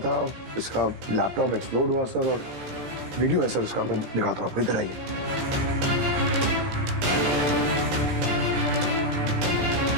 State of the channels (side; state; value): left; late; 17 ms